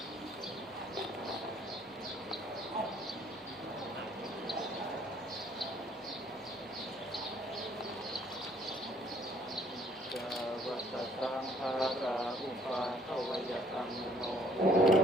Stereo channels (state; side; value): normal; both; correlation 0.62